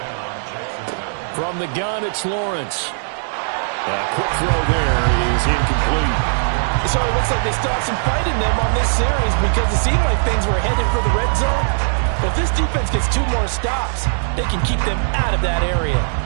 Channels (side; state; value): left; silent; digital silence